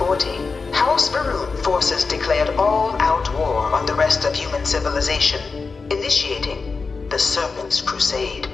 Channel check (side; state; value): right; quieter; 4.5 dB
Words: 1940, House Varun forces declared all-out war on the rest of human civilization, initiating the Serpent's Crusade.